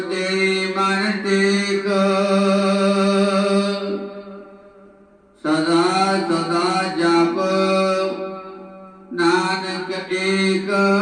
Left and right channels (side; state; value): both; identical; correlation 1.00